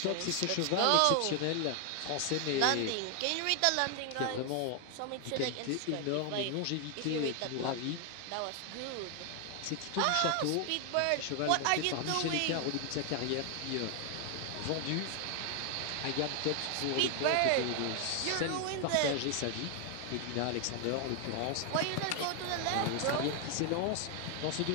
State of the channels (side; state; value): both; different; correlation 0.00